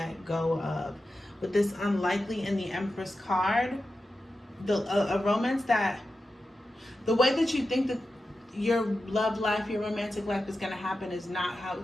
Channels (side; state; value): both; normal; correlation 0.91